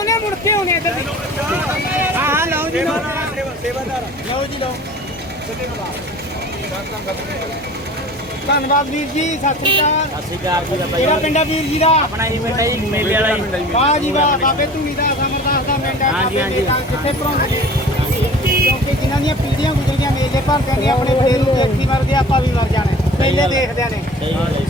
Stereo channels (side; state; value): both; normal; correlation 0.43